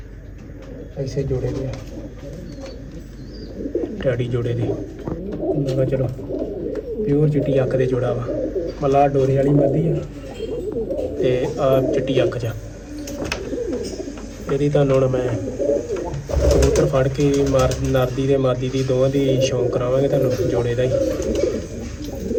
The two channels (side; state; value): both; identical; correlation 1.00